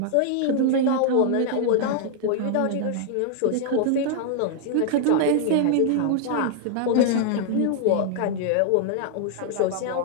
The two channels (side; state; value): both; different; correlation 0.00